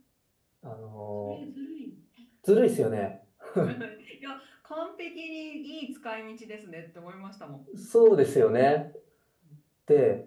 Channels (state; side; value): identical; both; correlation 1.00